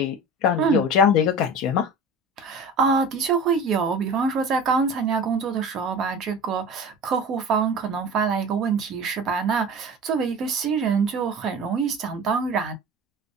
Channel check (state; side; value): normal; both; correlation 0.35